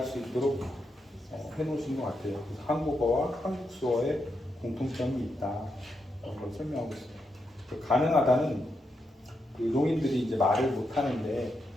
수 있도록 해놓으신 것 같아요. 그래서 한국어와 한국 수어에 공통점이 있다. 그런 걸 설명하고 있어요. 그 가능하다는 그 농인들이 이제 말을 못 하는데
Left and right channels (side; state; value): both; normal; correlation 0.83